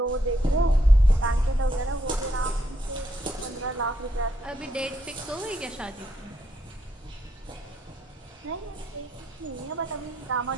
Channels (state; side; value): normal; both; correlation 0.76